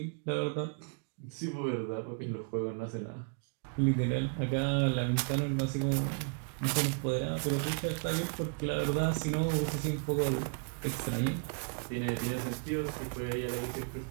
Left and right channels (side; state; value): left; quieter; 39.2 dB